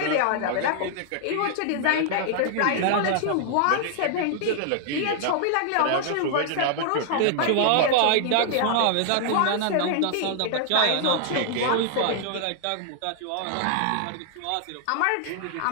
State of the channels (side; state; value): both; different; correlation 0.00